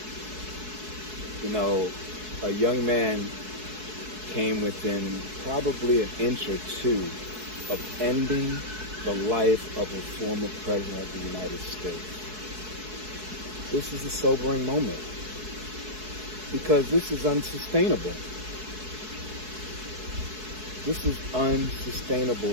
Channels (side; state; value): left; late; 4.7 ms